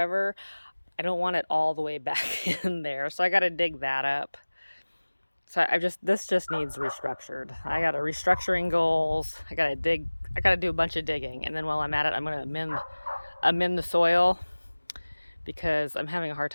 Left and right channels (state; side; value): inverted; both; correlation -1.00